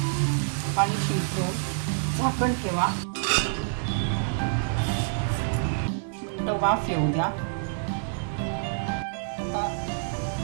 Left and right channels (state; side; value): silent; left; digital silence